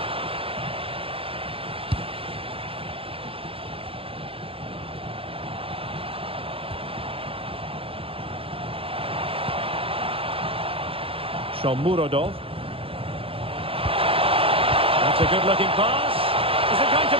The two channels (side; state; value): left; late; 0.27 ms